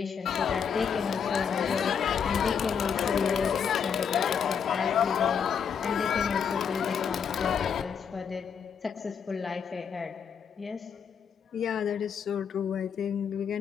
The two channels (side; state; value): right; quieter; 7.1 dB